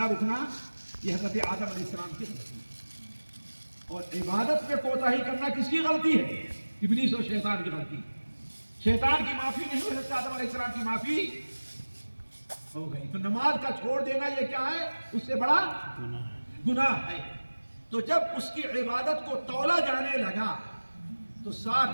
رکنا، یہ حضرت آدم علیہ السلام کی غلطی ہے۔ اور عبادت میں کوتاہی کرنا کس کی غلطی ہے؟ ابلیس اور شیطان کی غلطی۔ شیطان کی معافی نہیں ہوئی، حضرت آدم علیہ السلام کی معافی ہو گئی۔ تو نماز کا چھوڑ دینا یہ کیا ہے؟ اس سے بڑا گناہ ہے۔ تو جب اس کی عبادت کو تولا جانے لگا تو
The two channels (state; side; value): inverted; both; correlation -1.00